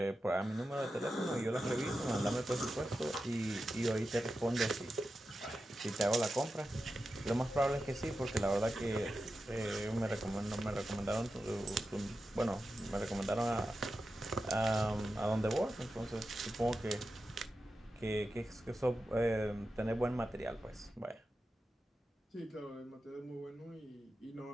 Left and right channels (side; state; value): both; normal; correlation 0.91